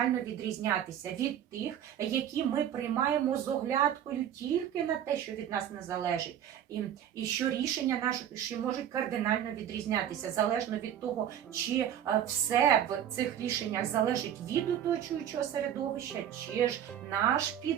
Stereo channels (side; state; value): left; quieter; 10.2 dB